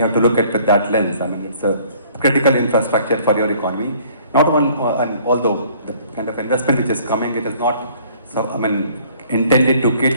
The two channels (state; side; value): inverted; both; correlation -0.57